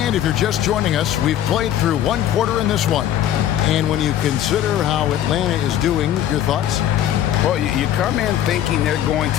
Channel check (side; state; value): right; quieter; 11.2 dB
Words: And if you're just joining us, we've played through one quarter in this one. And when you consider how Atlanta is doing, your thoughts? Well, you come in thinking they're going